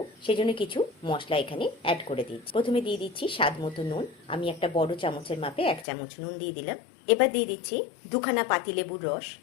সেজন্য কিছু মশলা এখানে অ্যাড করে দিচ্ছি। প্রথমে দিয়ে দিচ্ছি স্বাদ মতো নুন। আমি একটা বড় চামচের মাপে 1 চামচ নুন দিয়ে দিলাম। এবার দিয়ে দিচ্ছি 2খানা পাতিলেবুর রস।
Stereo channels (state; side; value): drops out; right; at 5.9 s